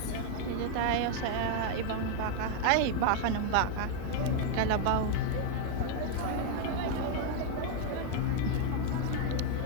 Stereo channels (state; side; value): different; both; correlation 0.00